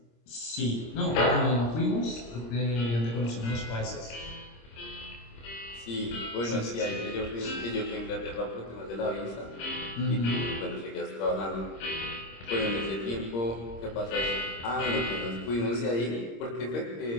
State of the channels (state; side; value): late; right; 26 ms